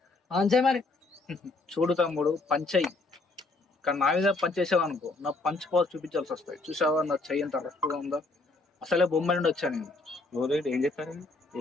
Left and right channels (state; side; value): quieter; right; 3.3 dB